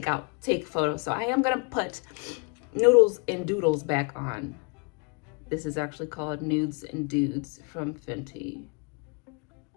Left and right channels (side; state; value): right; quieter; 34.6 dB